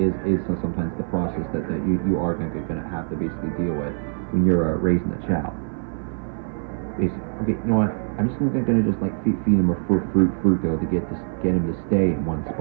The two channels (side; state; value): left; silent; 57 dB below the other